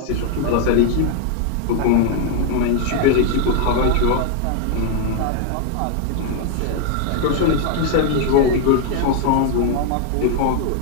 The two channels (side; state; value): both; different; correlation 0.00